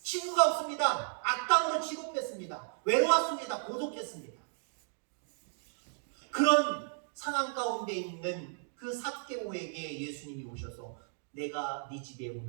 친구가 없습니다. 악당으로 취급했습니다. 외로웠습니다. 고독했습니다. 그런 상황 가운데 있는 그 삭개오에게 예수님이 오셔서 내가 네 집에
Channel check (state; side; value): silent; left; digital silence